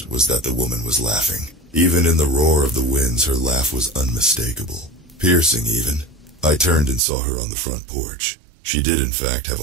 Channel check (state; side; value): drops out; left; at 7.0 s